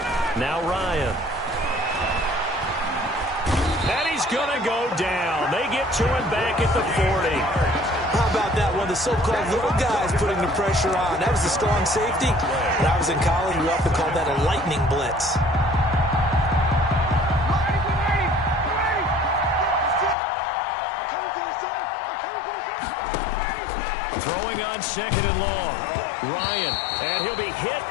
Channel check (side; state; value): right; drops out; at 20.2 s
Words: Now Ryan. And he's going to go down. They get to him back at the 40. How about that one? The so-called little guys putting the pressure on. That was the strong safety. When I was in college, we often called that a lightning blitz. Throwing on 2nd and long. Ryan, and he'll be hit